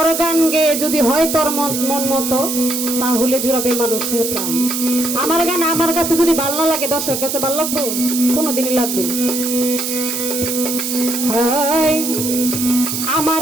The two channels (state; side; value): noise; right; hiss, 3 dB below the sound